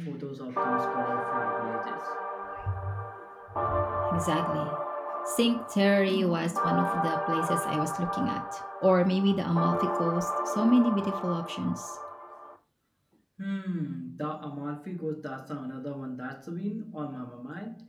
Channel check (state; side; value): identical; both; correlation 1.00